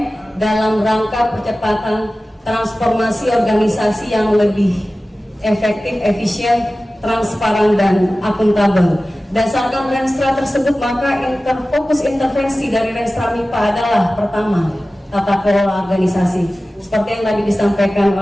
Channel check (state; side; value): normal; both; correlation 0.96